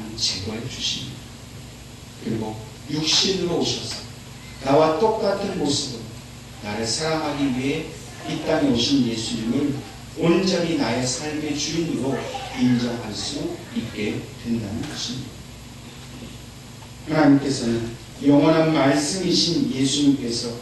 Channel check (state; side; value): identical; both; correlation 1.00